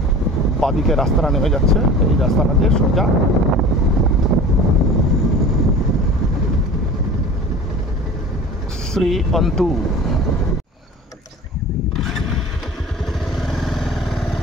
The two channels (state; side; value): normal; both; correlation 0.40